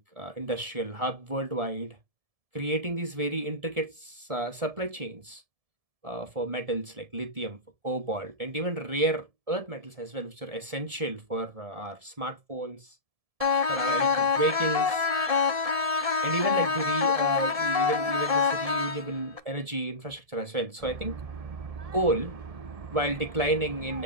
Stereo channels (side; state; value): left; late; 1.7 ms